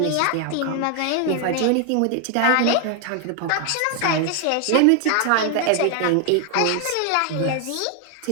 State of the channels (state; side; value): different; both; correlation 0.00